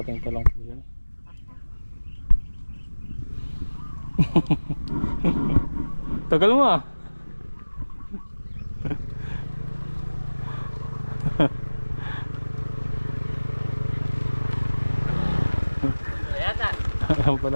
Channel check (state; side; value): inverted; both; correlation -1.00